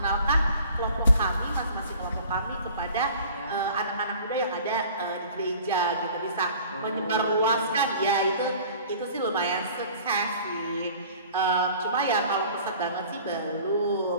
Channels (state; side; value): inverted; both; correlation -0.48